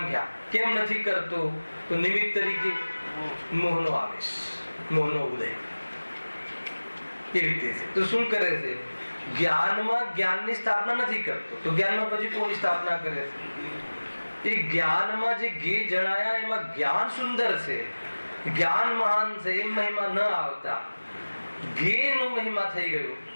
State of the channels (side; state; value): both; inverted; correlation -1.00